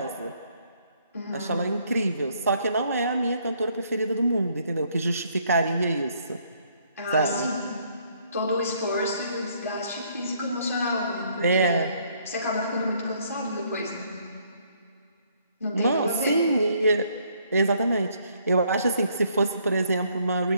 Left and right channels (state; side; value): inverted; both; correlation -0.67